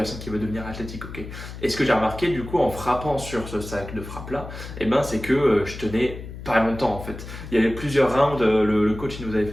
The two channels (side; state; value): left; noise; hum, 11 dB below the sound